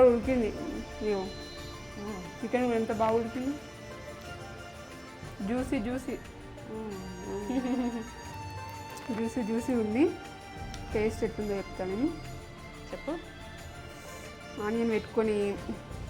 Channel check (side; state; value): both; identical; correlation 1.00